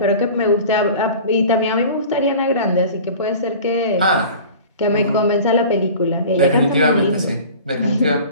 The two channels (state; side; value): inverted; both; correlation -0.40